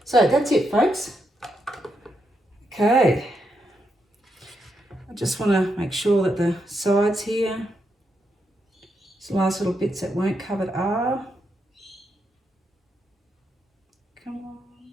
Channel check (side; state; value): both; normal; correlation 0.82